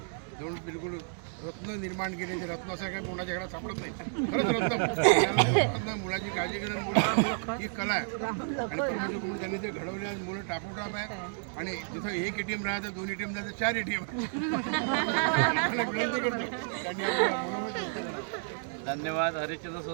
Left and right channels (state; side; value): silent; left; digital silence